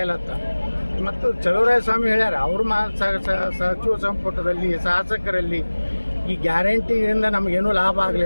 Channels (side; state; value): both; inverted; correlation -1.00